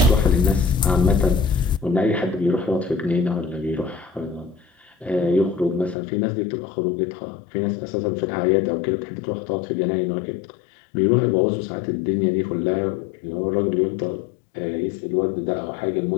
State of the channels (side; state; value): right; drops out; at 6.0 s